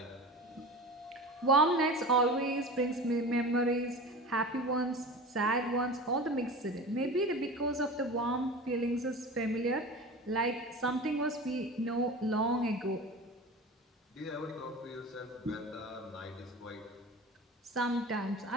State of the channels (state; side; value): normal; both; correlation 0.34